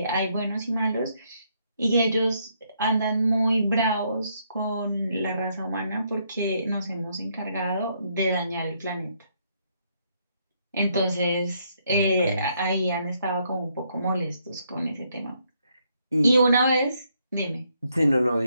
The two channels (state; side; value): inverted; both; correlation -0.74